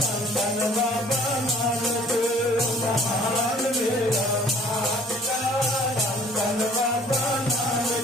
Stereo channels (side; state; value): both; normal; correlation 0.54